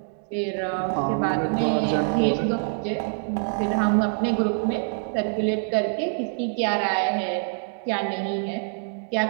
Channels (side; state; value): left; silent; 60 dB below the other